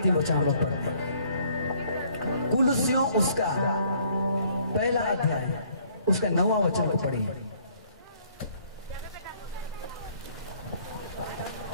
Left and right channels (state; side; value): inverted; both; correlation -0.62